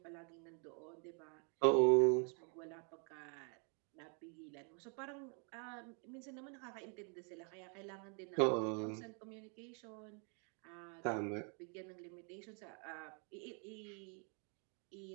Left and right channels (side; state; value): left; quieter; 39.3 dB